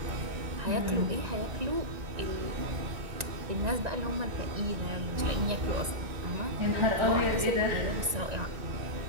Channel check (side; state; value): left; late; 1.9 ms